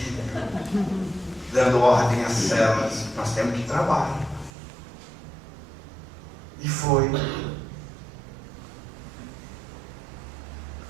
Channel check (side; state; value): left; drops out; at 4.5 s